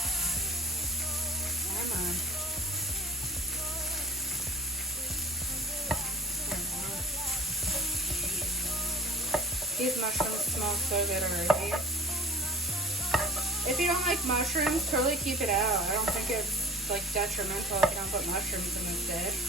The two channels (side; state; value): both; normal; correlation 0.45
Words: Come on. These mushrooms smell so good already. If you don't like mushrooms, totally keep it out. I don't think it's like detrimental if you don't put mushrooms in this dish.